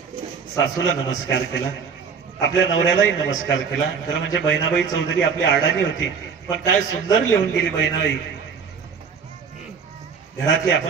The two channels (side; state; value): left; quieter; 6.1 dB